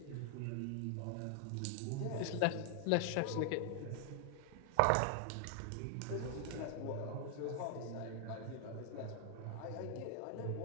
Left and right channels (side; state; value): both; different; correlation 0.00